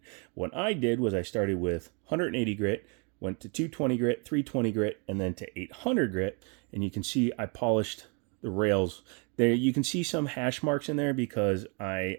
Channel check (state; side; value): quieter; left; 34.0 dB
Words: What I did was I started with 180 grit, went to 220 grit, 320 grit, and then to 800 grit. And you can see I polished the rails. There you can see some hash marks in there because I